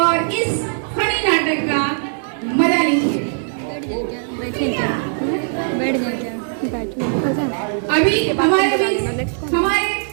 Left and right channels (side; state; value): left; silent; digital silence